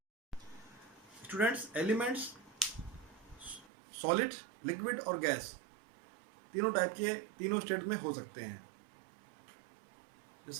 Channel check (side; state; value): left; drops out; at 3.7 s